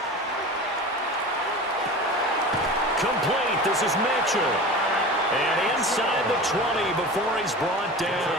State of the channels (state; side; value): normal; both; correlation 0.33